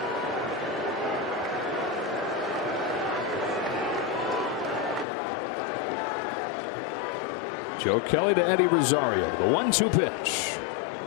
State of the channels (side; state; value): right; drops out; at 5.1 s